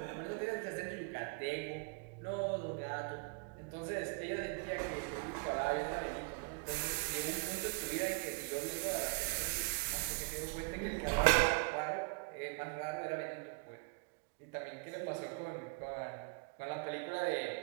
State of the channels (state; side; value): quieter; left; 31.1 dB